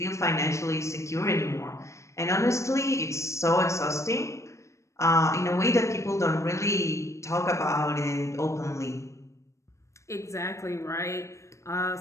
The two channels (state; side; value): late; right; 0.14 ms